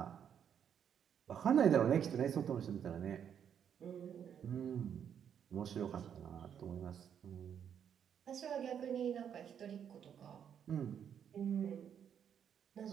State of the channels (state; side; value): quieter; left; 8.5 dB